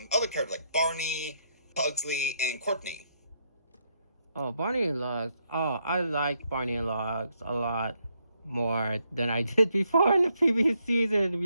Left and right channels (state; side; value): inverted; both; correlation -0.76